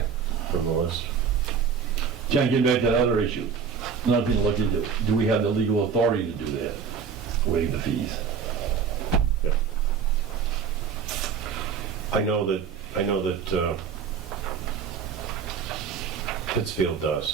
from the list. John, getting back to that other issue, another thing to look into, do we have the legal authority to do that? Waive the fees? Yeah. I know that Pittsfield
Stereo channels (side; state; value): left; quieter; 6.5 dB